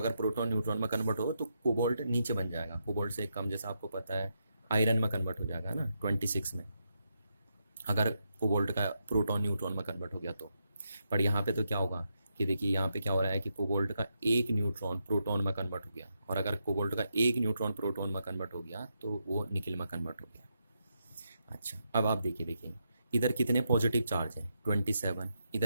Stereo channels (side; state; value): both; inverted; correlation -0.82